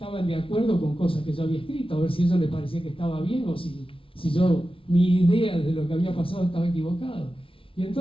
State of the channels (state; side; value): late; right; 0.26 ms